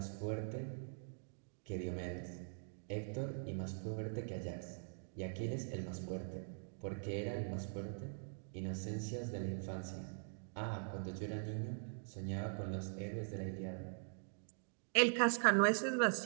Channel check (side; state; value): left; silent; digital silence